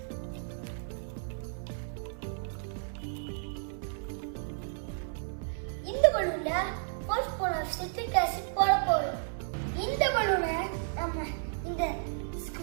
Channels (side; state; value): left; silent; 56 dB below the other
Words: இந்த பலூன்ல 4 spoon of citric acid போட போறோம். இந்த பலூனை நம்ம இந்த